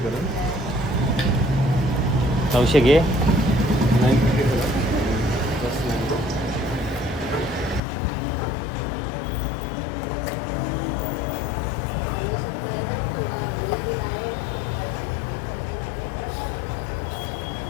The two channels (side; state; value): right; drops out; at 7.8 s